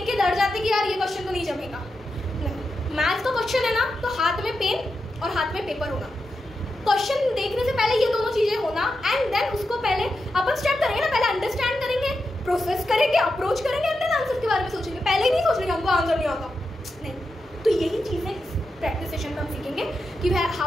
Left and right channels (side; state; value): both; normal; correlation 0.88